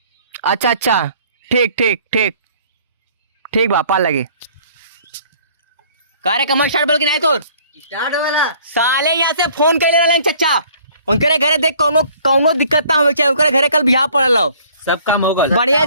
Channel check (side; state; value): both; inverted; correlation -0.56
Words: अच्छा अच्छा ठीक ठीक ठीक ठीक बा पा लगे। कार्य कमर स्टार्ट बोल के नहीं तो स्टार्ट वाला साले यहाँ से फोन कर ले रहे चचा। उनके घरे देख कौनो दिक्कत ना हो चाहिए। उनके घरे कल बिहार पड़ल हो, सब काम होगा। बढ़िया